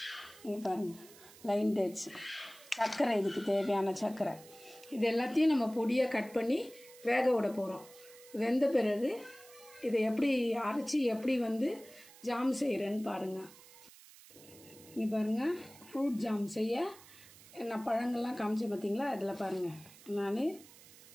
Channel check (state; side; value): noise; right; hiss, 21 dB below the sound